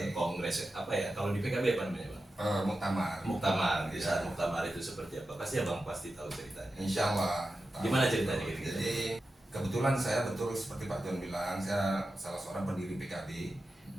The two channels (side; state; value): both; normal; correlation 0.92